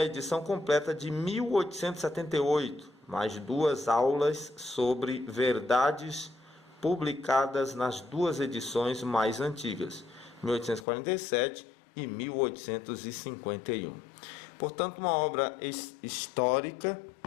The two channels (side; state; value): right; drops out; at 10.9 s